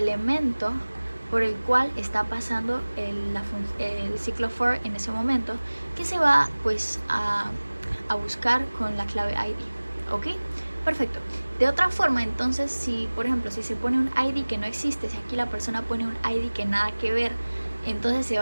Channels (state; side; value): inverted; both; correlation -1.00